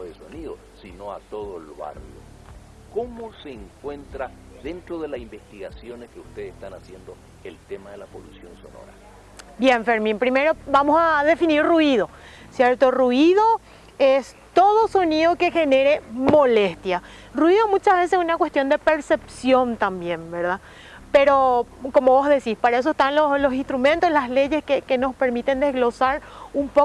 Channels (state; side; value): identical; both; correlation 1.00